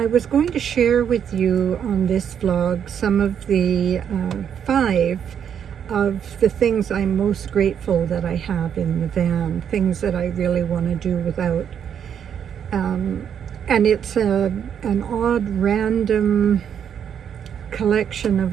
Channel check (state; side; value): quieter; left; 8.4 dB